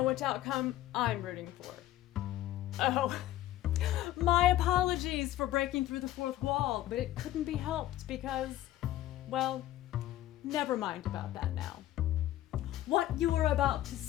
which outcome I'm rooting for. Oh, my apologies for breaking through the fourth wall, but it couldn't be helped because, well, never mind about that now. What you are about to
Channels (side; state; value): right; quieter; 14.1 dB